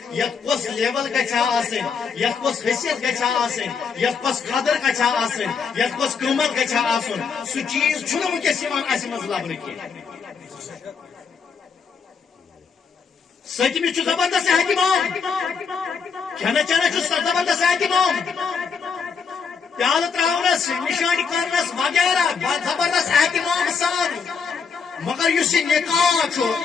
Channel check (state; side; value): quieter; right; 5.7 dB